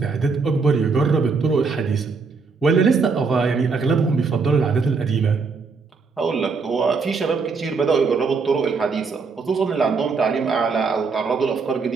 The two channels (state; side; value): quieter; left; 4.7 dB